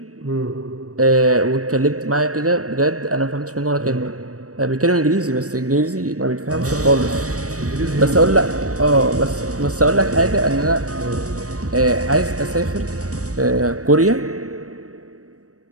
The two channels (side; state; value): left; late; 0.66 ms